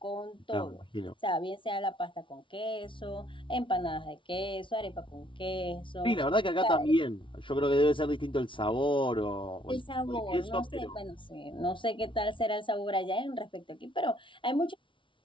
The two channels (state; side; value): late; right; 0.25 ms